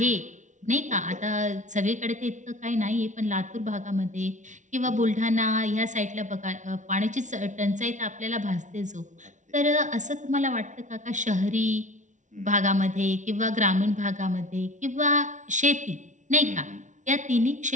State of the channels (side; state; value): left; late; 0.36 ms